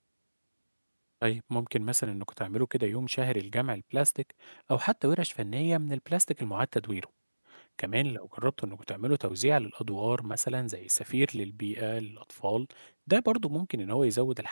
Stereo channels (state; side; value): inverted; both; correlation -1.00